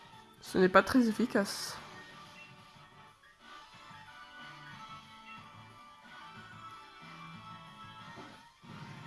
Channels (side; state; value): both; identical; correlation 1.00